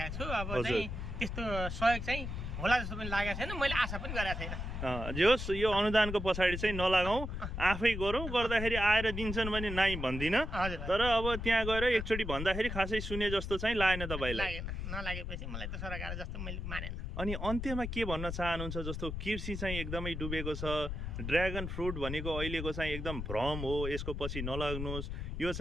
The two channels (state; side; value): noise; left; rumble, 5 dB below the sound